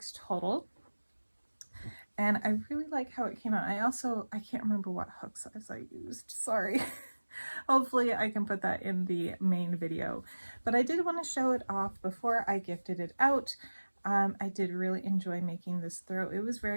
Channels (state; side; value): inverted; both; correlation -1.00